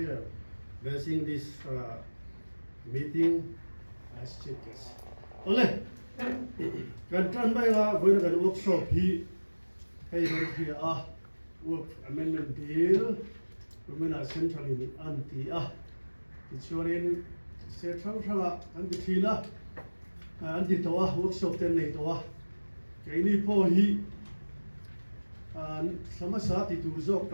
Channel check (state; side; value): inverted; both; correlation -1.00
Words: blessing this meeting as chief guest. Ole, kan tran bai ga voi kan workshop hi hey hi work amendment bill rumena centrally anti ichurin se thang thanga an di thila an di tawa workshop ten nei tawa kaini po hi samasa ti tu zok